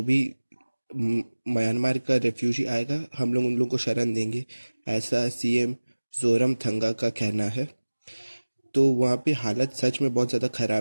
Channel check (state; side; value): inverted; both; correlation -1.00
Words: भी म्यांमार का रेफ्यूजी आएगा हम लोग उन लोगों को शरण देंगे, ऐसा सीएम जोरमथंगा का कहना है। तो वहाँ पे हालत सच में बहुत ज़्यादा